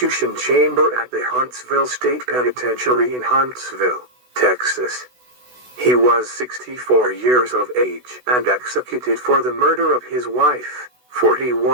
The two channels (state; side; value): late; left; 16 ms